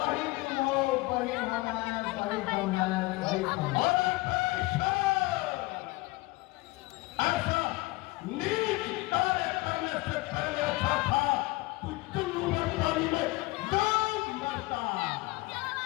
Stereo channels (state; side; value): quieter; right; 21.7 dB